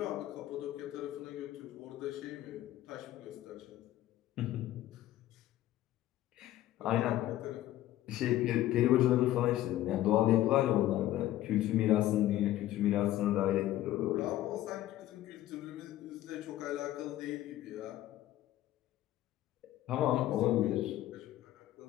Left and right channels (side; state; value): right; quieter; 14.1 dB